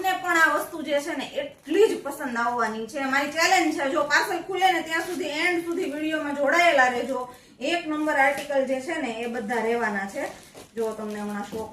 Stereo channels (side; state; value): both; identical; correlation 1.00